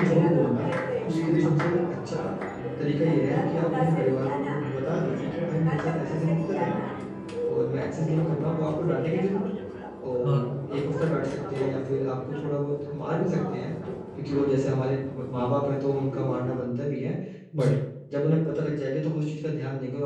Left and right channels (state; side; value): identical; both; correlation 1.00